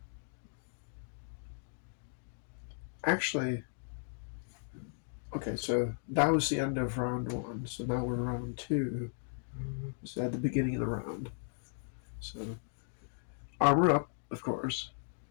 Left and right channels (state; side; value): silent; right; digital silence